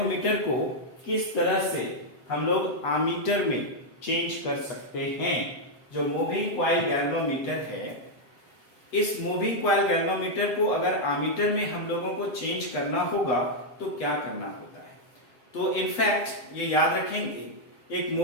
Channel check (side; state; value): right; late; 8.1 ms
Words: को किस तरह से हम लोग आमीटर में चेंज कर सकते हैं। जो मूविंग कॉइल गैल्वेनोमीटर है, इस मूविंग कॉइल गैल्वेनोमीटर को अगर आमीटर में हम लोगों को चेंज करना होगा तो क्या करना होता है। तो इनफैक्ट ये याद रखेंगे, एक